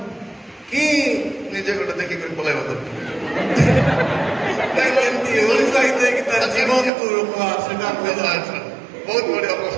କି ନିଜେ ଗୋଟେ ଦେଖିକରି ପଳାଇବା ଦରକାର? ଏମିତି ଉତ୍ସାହିତ ହେଇକି ତାର ଜୀବନକୁ ରୋକବା, ସେଟା ବହୁତ ବଢିଆ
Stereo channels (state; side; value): drops out; left; at 6.9 s